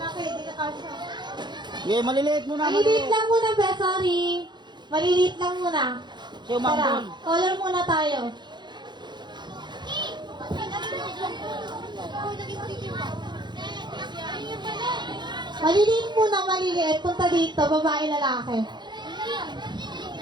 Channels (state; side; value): late; left; 0.21 ms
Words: hindi na kasya. Yeah, maliliit muna. Maliliit lang muna, be, sorry. Maliliit lang muna. Sa'yo, Mangbun. Tara, color muna tayo. Maliliit muna, maliliit. Punta dito, babae, lalaki.